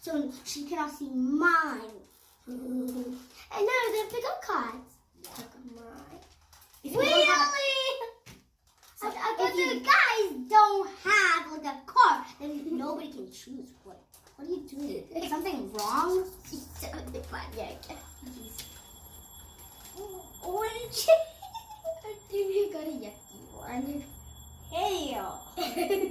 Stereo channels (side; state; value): both; identical; correlation 1.00